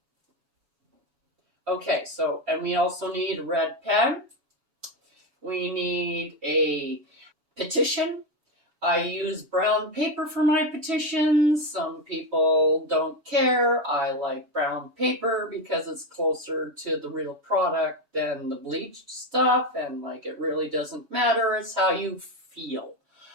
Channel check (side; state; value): left; late; 7.1 ms